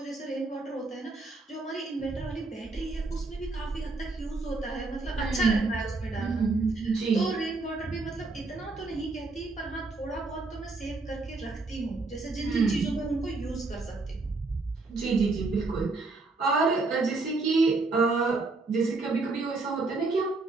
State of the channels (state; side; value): quieter; left; 3.6 dB